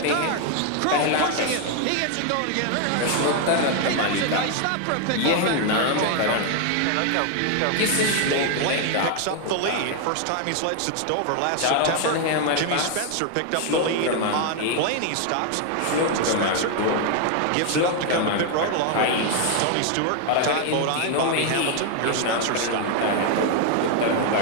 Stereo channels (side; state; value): both; different; correlation 0.00